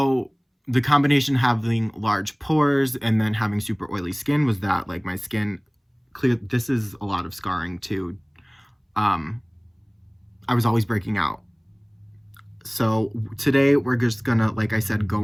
the combination having large pores and then having super oily skin was that like my skin clear. This is a lot of scarring too. I was always breaking out. So today we're just gonna, like I said,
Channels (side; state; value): both; identical; correlation 1.00